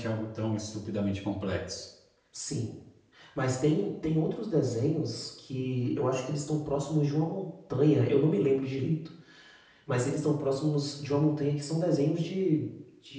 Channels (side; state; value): both; identical; correlation 1.00